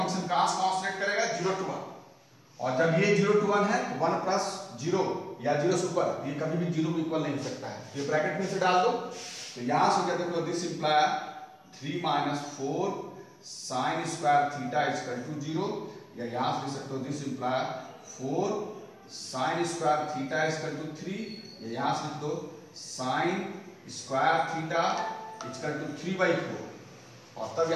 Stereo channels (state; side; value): identical; both; correlation 1.00